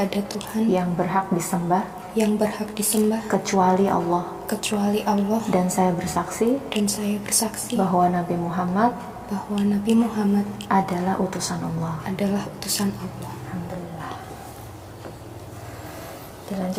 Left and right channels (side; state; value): both; identical; correlation 1.00